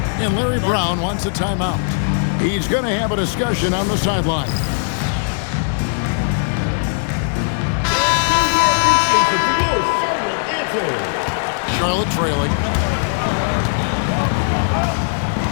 And Larry Brown wants a timeout. He's going to have a discussion on the sideline. Charlotte trailing.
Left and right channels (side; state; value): right; silent; digital silence